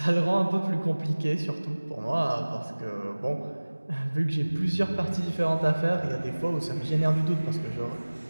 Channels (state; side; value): inverted; both; correlation -1.00